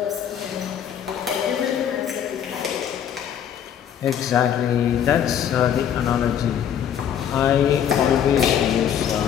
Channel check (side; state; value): right; quieter; 9.2 dB